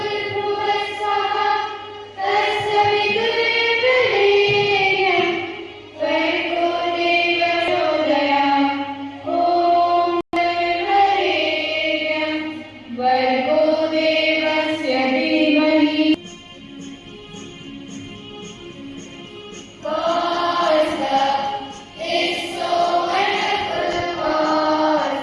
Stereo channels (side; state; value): both; identical; correlation 1.00